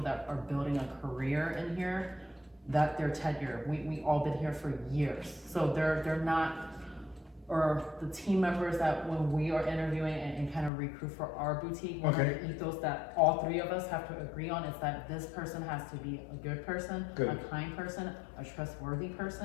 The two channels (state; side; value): drops out; right; at 10.7 s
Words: that are building a career in here, that their tenure, we all been here for years. So they're not, or the team members that when we are interviewing and kind of recruit for our boutique, one of the ethos that all three of us have to agree on is that this person has to be a good person, a kind person, a trustworthy